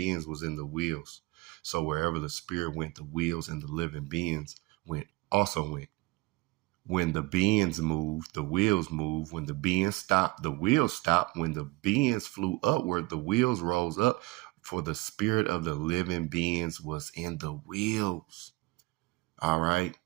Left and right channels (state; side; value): quieter; left; 22.3 dB